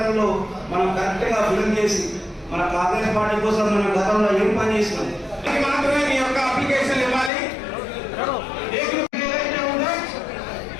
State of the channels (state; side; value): drops out; right; at 7.3 s